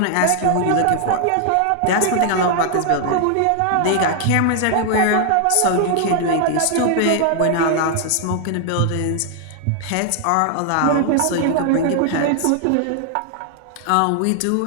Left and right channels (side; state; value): both; different; correlation 0.00